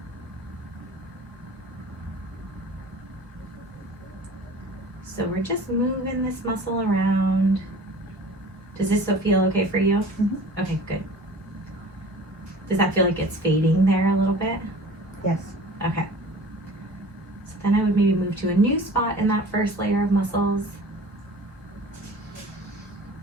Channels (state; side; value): normal; both; correlation 0.43